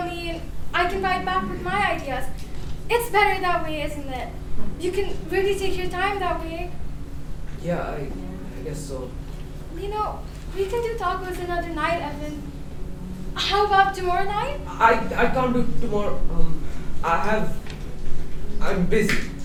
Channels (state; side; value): identical; both; correlation 1.00